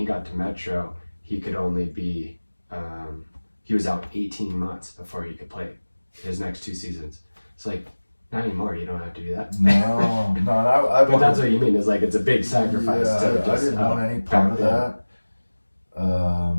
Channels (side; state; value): both; inverted; correlation -1.00